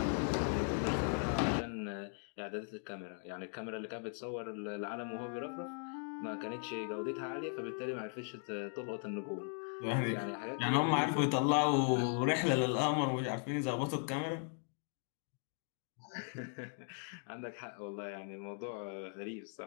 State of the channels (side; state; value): right; silent; 52 dB below the other